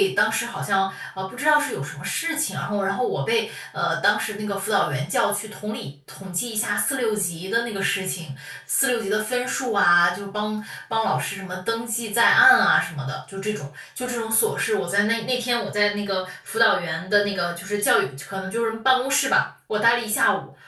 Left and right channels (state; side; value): identical; both; correlation 1.00